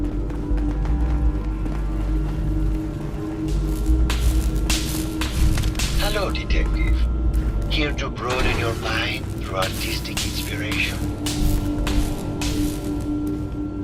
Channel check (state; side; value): identical; both; correlation 1.00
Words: radio, Detective. Here to broaden your mind through artistic inspiration.